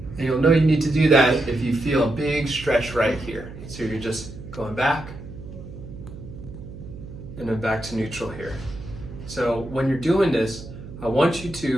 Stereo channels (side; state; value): right; noise; hum, 13 dB below the sound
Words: And you'll know you need to do that if you feel a big stretch right here. So you're just going back and then back to neutral here. So when you're doing this, I want you